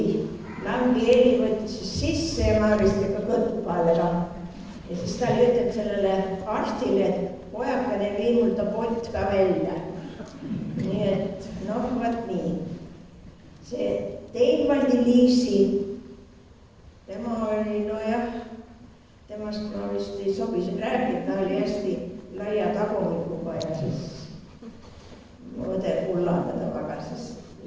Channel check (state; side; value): identical; both; correlation 1.00